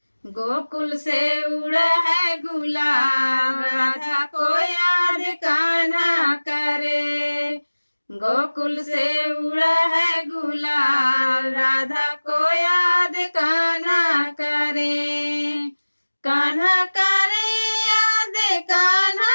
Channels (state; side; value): inverted; both; correlation -1.00